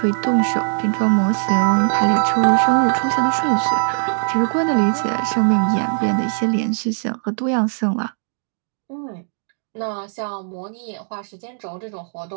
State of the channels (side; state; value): left; silent; digital silence